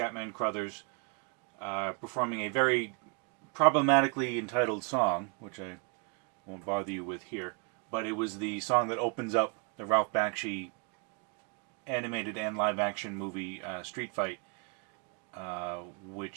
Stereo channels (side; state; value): left; quieter; 34.4 dB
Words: Crothers performing a very problematically entitled song, which I won't bother you with here. But it was the song that opens up the Ralph Bakshi animated and live-action movie Street Fight,